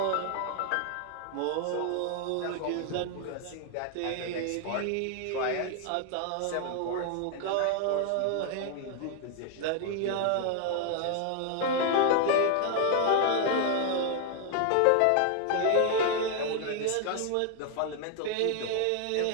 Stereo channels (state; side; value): different; both; correlation 0.00